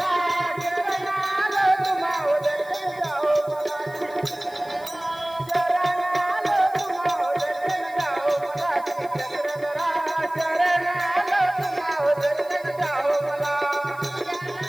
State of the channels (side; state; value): left; noise; hiss, 24 dB below the sound